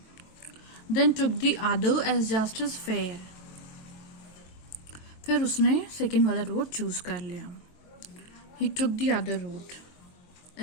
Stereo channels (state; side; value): late; right; 23 ms